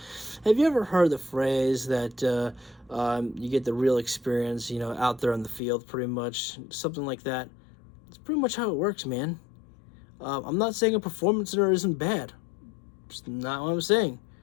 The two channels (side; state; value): right; drops out; at 5.6 s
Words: Have you ever heard the phrase that you get the real experience, out there on the field, pretty much? Something like that. It's pretty much how it works, man. I'm not saying a performance center isn't bad. It's not what I'm saying.